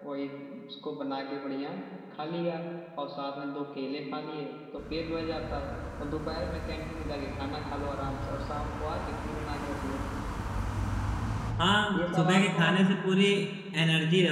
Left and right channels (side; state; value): both; identical; correlation 1.00